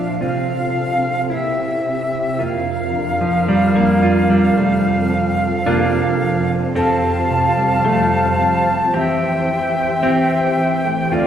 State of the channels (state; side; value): normal; both; correlation 0.78